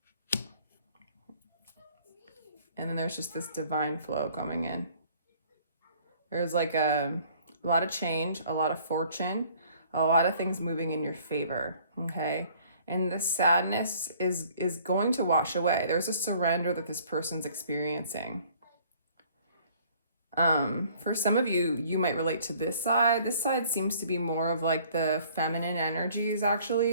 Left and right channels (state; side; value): inverted; both; correlation -0.57